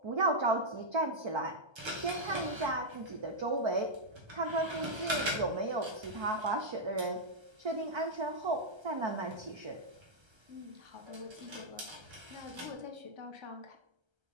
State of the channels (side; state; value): left; late; 1.3 ms